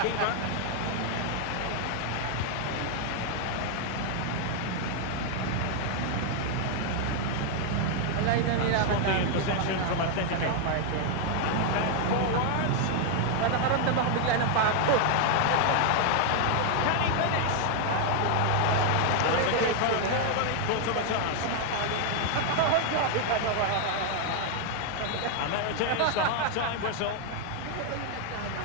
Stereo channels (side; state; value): both; different; correlation 0.00